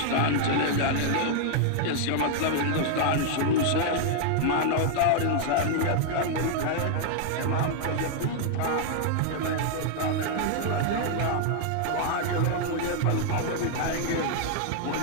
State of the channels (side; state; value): both; different; correlation 0.00